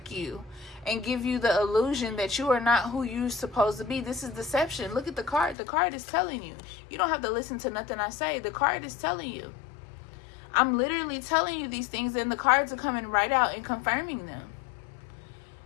you and give you the illusion that you are not who you're supposed to be. This is deception. Look at the card. The card is telling you. You don't have to listen to nothing I say. The card is telling you. I'm literally telling you these things, and the cards are coming right out and confirming them.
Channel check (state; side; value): drops out; right; at 5.6 s